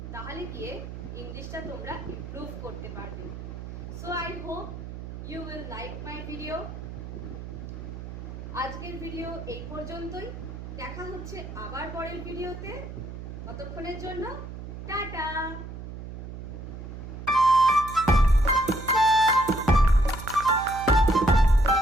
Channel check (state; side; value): noise; right; hum, 10 dB below the sound